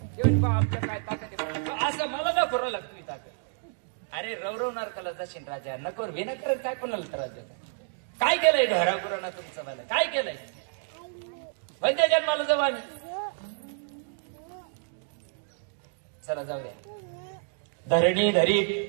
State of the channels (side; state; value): left; silent; digital silence